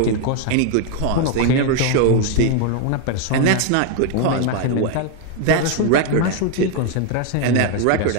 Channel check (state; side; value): different; both; correlation 0.01